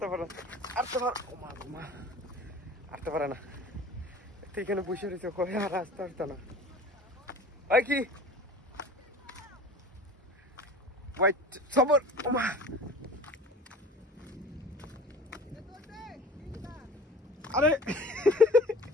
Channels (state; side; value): normal; both; correlation 0.42